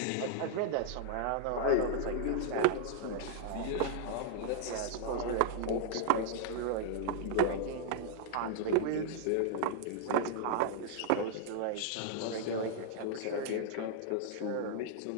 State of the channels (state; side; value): different; both; correlation -0.01